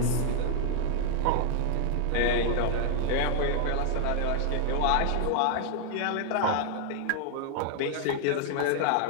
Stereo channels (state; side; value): different; both; correlation -0.01